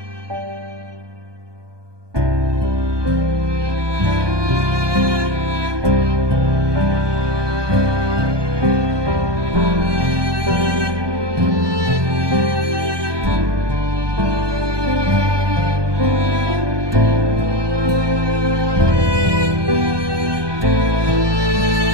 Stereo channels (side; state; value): left; late; 1.2 ms